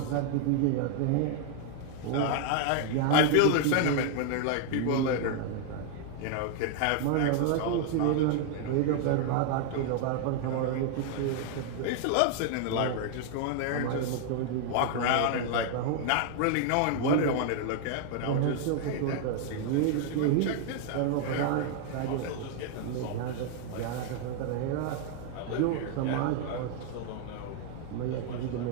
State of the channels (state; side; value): different; both; correlation 0.00